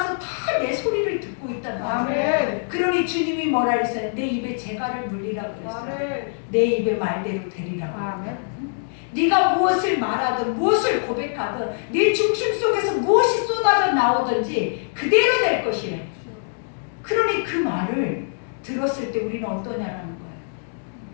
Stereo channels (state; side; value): silent; right; digital silence